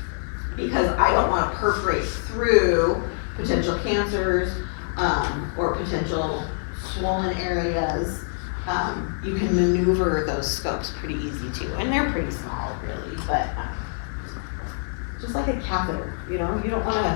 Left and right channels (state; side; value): silent; right; digital silence